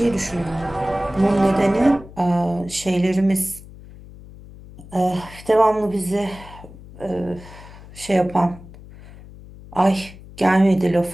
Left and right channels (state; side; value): noise; left; hum, 18 dB below the sound